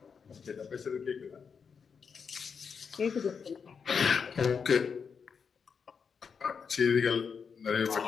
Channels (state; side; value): quieter; right; 6.1 dB